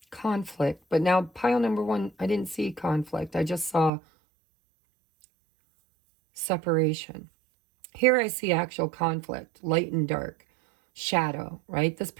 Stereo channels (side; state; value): left; drops out; at 3.9 s